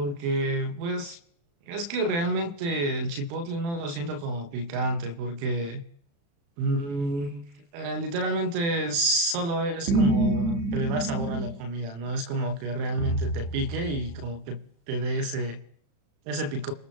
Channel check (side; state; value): left; late; 35 ms